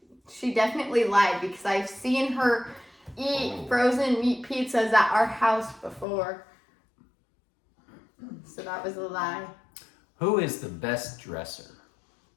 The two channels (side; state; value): right; drops out; at 6.1 s